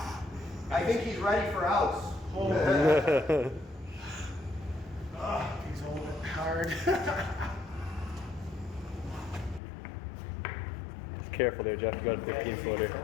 I think he's ready for outs. He's holding it hard. Just careful there, Jeff. You got a 15 footer.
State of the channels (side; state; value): right; drops out; at 9.6 s